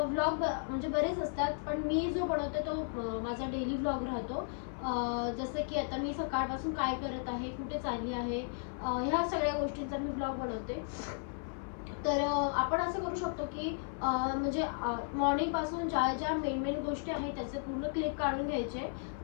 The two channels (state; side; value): silent; right; 55 dB below the other